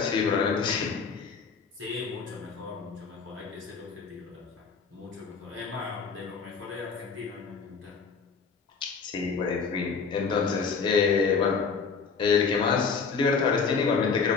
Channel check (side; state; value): right; quieter; 5.4 dB